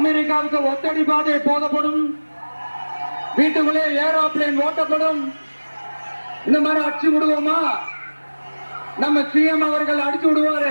ஒத்தடி பாதை போதப்படும், வீட்டுக்குள்ளே ஏரோப்ளேன் ஓட்டப்படும். இந்த மாதிரி அடிச்சு விடுவோமா? நம்ம சிஎம் அவர்கள் அடிச்சு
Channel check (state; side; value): inverted; both; correlation -1.00